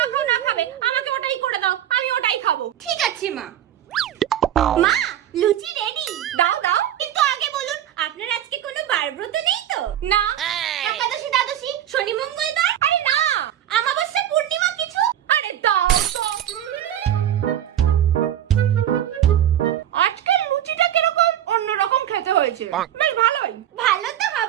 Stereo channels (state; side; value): quieter; left; 11.2 dB